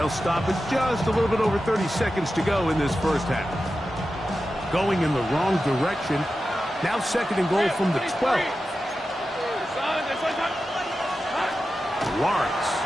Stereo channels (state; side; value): normal; both; correlation 0.92